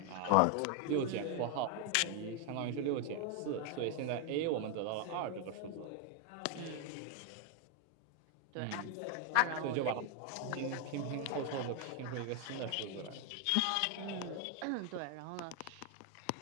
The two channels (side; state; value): both; different; correlation 0.01